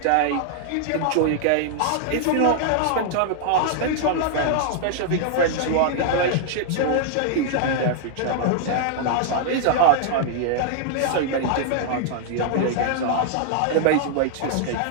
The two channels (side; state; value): both; different; correlation -0.01